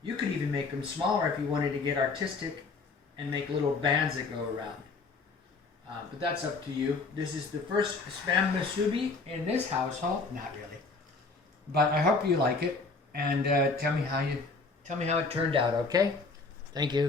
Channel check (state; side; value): quieter; right; 4.0 dB